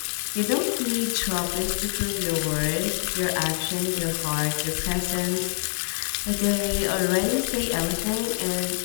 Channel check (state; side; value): silent; right; digital silence